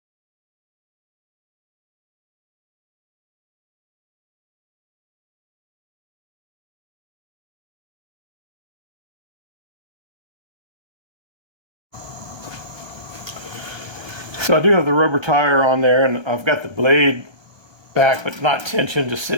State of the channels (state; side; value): late; left; 1.2 ms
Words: So I do have the rubber tire on there, and I've got the blade back but not tensioned, just